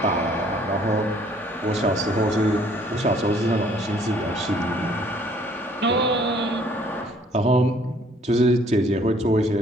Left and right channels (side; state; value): both; normal; correlation 0.59